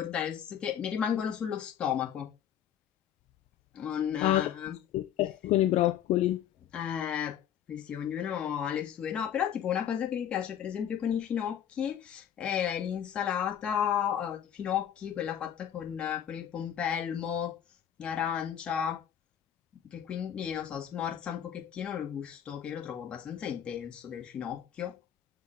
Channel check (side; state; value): right; quieter; 9.8 dB